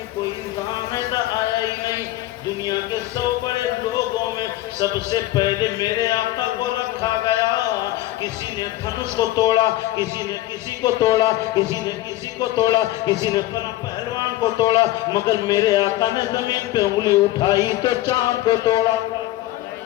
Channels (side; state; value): right; quieter; 15.9 dB